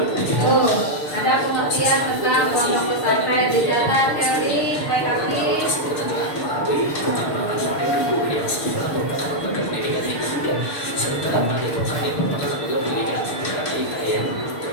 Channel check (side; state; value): right; late; 6.7 ms